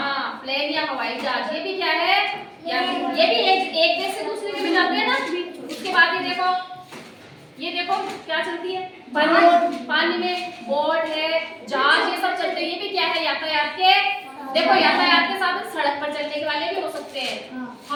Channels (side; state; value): both; identical; correlation 1.00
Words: प्लेन या हवाई जहाज। ये भी क्या है? ये भी एक देश से दूसरे में जाते हैं ना। उसके बाद ये देखो क्या चलती है? पानी में बोट है, जहाज, ये सब चलते हैं। ये भी क्या है? यातायात के। देखो यातायात के साधन सड़क पर चलने वाले भी हो सकते हैं,